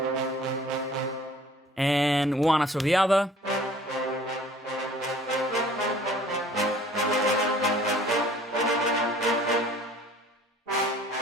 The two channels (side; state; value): both; normal; correlation 0.52